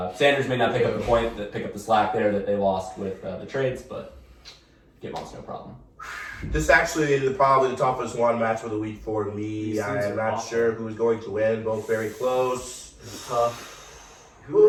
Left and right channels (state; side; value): identical; both; correlation 1.00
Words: Sanders may not pick up the slack there that they lost with the trades, but get Monas no problem. This is actually probably the toughest one match of the week for me. These I teams am are not awful. sure who's going to win. Both very close. It's tough.